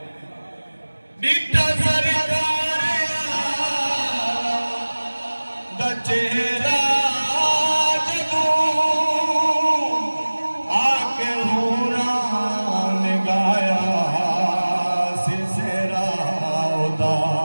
बिटा सरकार दा चेहरा जदों आके हूरां ने गाया सिसेरा उदा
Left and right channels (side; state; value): both; inverted; correlation -1.00